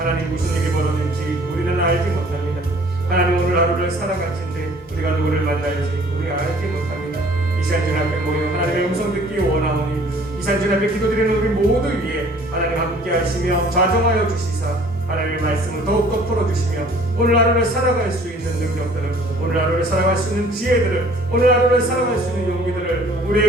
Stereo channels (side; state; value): both; normal; correlation 0.54